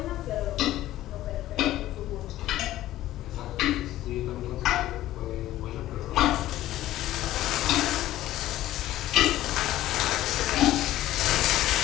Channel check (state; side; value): quieter; right; 14.5 dB